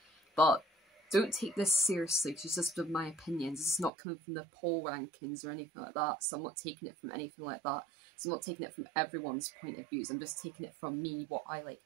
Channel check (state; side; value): drops out; left; at 3.9 s